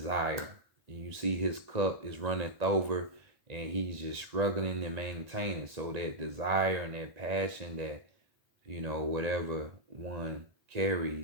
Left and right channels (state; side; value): late; left; 1.8 ms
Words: You see his cup is running over and he's just struggling to maintain it. So that desire and that passion that, you know, whatever one